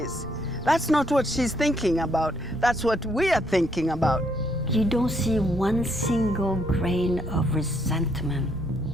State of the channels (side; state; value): right; noise; rumble, 16 dB below the sound